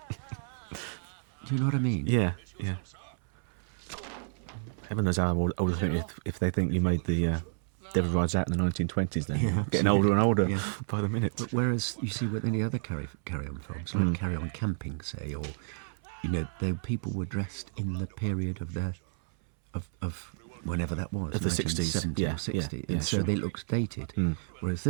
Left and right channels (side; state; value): left; silent; 57 dB below the other